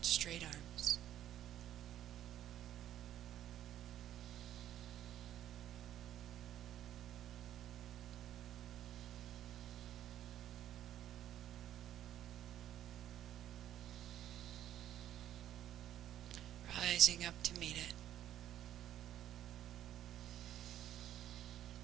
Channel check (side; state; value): left; quieter; 11.6 dB